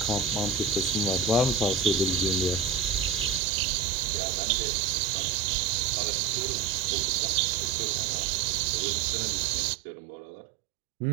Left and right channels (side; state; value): left; drops out; at 3.4 s